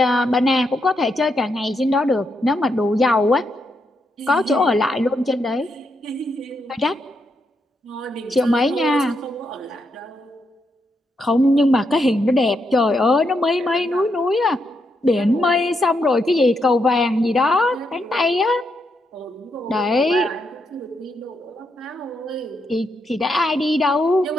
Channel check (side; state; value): both; normal; correlation 0.81